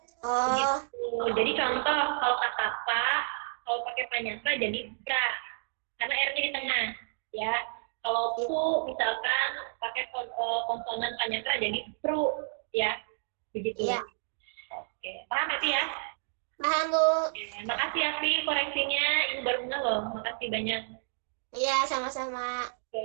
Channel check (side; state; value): left; silent; digital silence